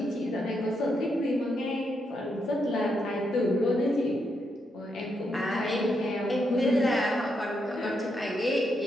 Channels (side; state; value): both; normal; correlation 0.81